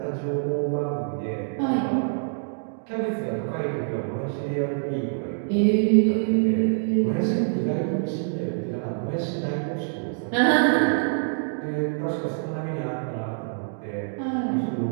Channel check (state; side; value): silent; left; digital silence